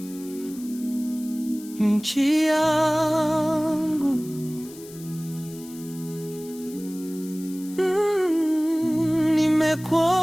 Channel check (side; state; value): left; noise; hiss, 19 dB below the sound